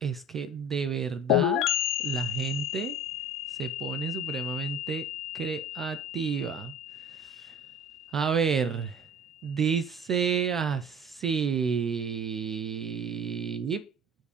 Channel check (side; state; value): both; normal; correlation 0.43